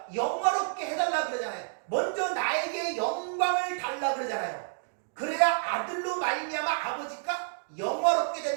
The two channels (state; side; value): silent; left; digital silence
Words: 영화롭게 해달라 그러잖아요. 먼저 나에게 영광을 달라 그러잖아요. 그래야 아들로 말미암아 아버지가 영화롭게